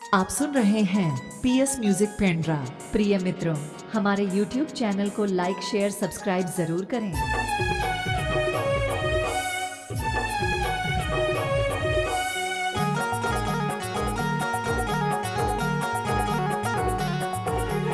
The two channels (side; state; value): both; identical; correlation 1.00